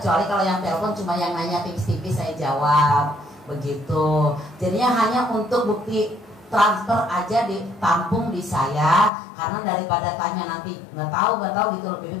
kalau yang telepon cuma yang nanya tipis-tipis saya jawab begitu. Jadinya hanya untuk bukti transfer aja ditampung di saya, karena daripada tanya nanti nggak tahu gitu loh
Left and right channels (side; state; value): right; drops out; at 9.1 s